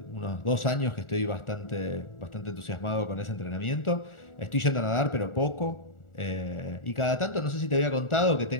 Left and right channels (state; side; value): late; right; 1.4 ms